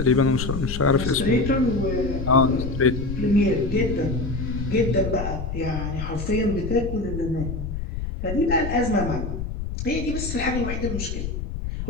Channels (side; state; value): left; noise; rumble, 5 dB below the sound